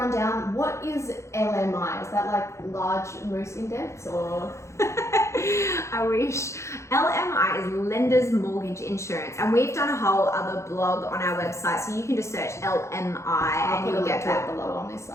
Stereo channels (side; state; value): right; late; 0.14 ms